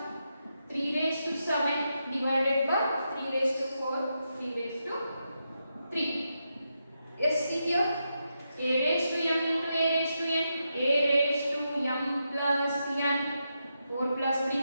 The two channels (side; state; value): both; inverted; correlation -0.85